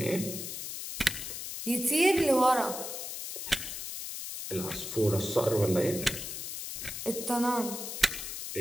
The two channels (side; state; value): left; noise; hiss, 7 dB below the sound